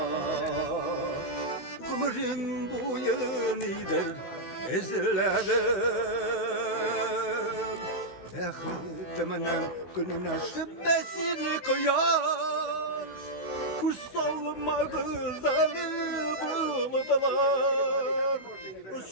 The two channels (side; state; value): right; late; 16 ms